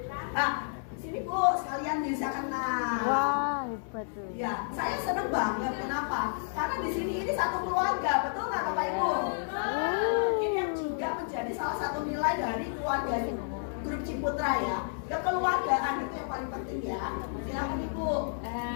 Nah, sini Bu, sekalian bisa kenal. Wah, hebat tuh. Ya, saya seneng banget. Kenapa? Karena di sini ini satu keluarga, betul nggak Bapak Ibu? Ini yang juga menjadi salah satu nilai dari keluarga Grup Ciputra ya. Kekeluargaan itu yang paling penting ya. Silakan Ibu.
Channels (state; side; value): silent; right; 57 dB below the other